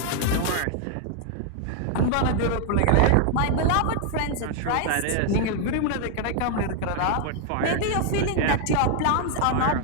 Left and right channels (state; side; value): different; both; correlation 0.00